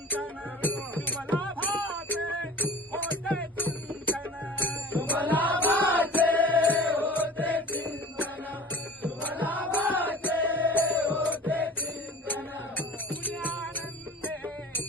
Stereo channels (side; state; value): both; normal; correlation 0.41